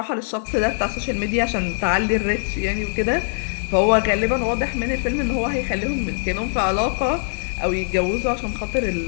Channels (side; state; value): right; silent; digital silence